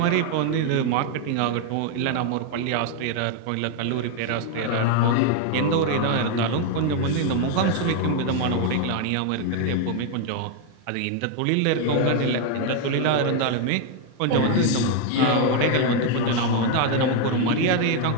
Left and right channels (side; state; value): both; different; correlation 0.00